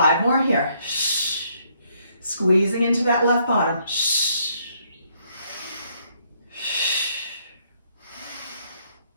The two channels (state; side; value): inverted; both; correlation -0.70